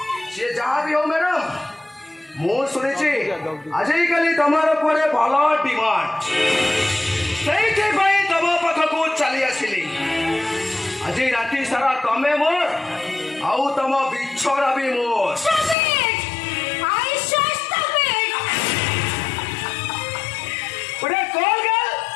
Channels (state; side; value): drops out; right; at 15.8 s